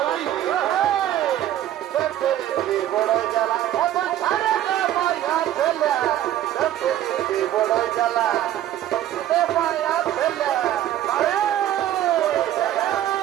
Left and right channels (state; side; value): quieter; left; 12.4 dB